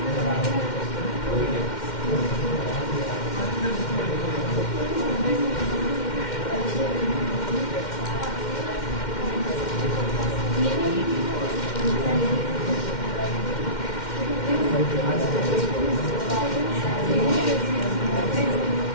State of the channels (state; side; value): late; right; 2.1 ms